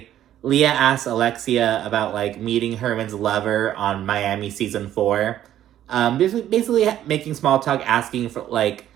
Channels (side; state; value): left; quieter; 11.7 dB